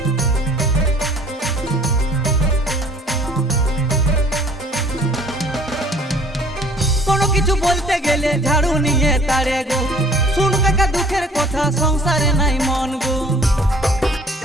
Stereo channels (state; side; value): normal; both; correlation 0.54